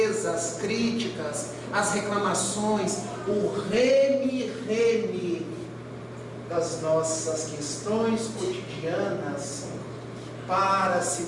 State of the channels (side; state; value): both; identical; correlation 1.00